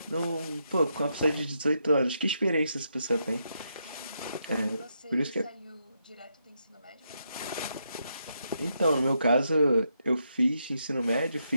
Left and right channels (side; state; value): both; inverted; correlation -0.81